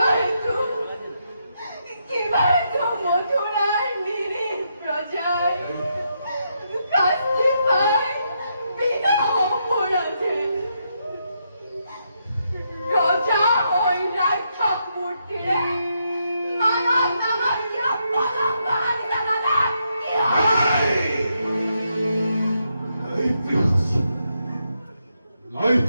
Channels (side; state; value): both; inverted; correlation -0.80